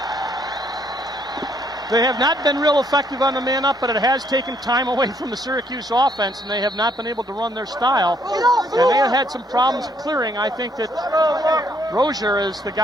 They have not been real effective on the man-up, but it has taken time away from the Syracuse offense, and they have not been able to run their style. And they have had some problems clearing. I think that Rozier is the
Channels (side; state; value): both; normal; correlation 0.69